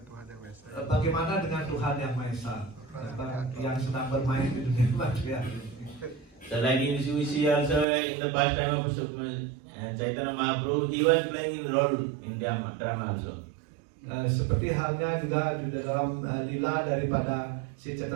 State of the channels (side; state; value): left; drops out; at 7.9 s